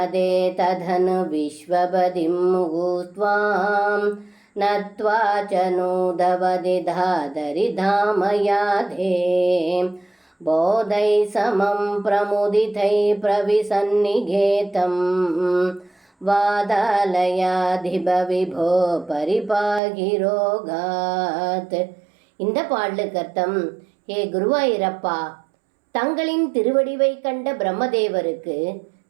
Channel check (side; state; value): left; drops out; at 19.8 s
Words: ததனு விஸ்வபதிம் முகூத்வாம் நத்வா ச நூதவதி தாதரி தாமயாதே போதை சமம் பிரமுதிதை பிரவிசன்னிகேதம் வாதாலயாதிப விபோ பரிபாகிரோகாத். இந்த பாடலுக்கு அர்த்தம்: ஹே குருவாயிரப்பா, தங்களின் திருவடிவை கண்ட பிரம்மதேவருக்கு